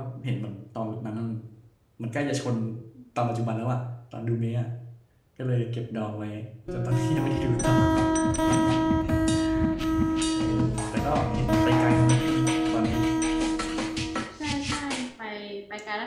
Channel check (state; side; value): identical; both; correlation 1.00